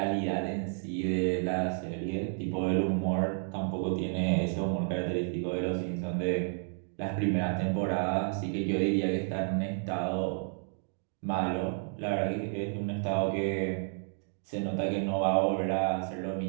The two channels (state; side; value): silent; left; 57 dB below the other